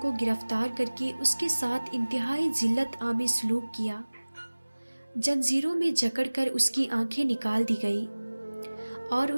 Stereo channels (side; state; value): both; inverted; correlation -1.00